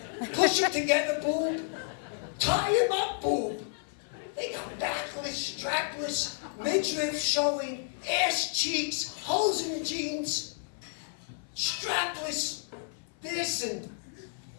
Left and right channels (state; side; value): silent; right; 57 dB below the other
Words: push them together boob, tie them up boob. They got backless, strapless, midriff showing, ass cheeks, holes in the jeans, strapless, this and